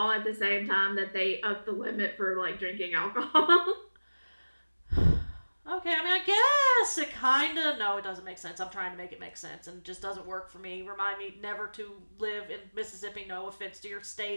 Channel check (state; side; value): inverted; both; correlation -1.00